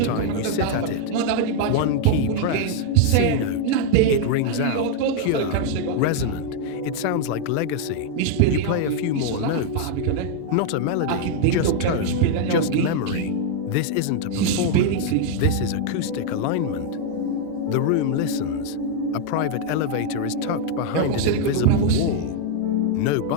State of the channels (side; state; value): both; different; correlation 0.00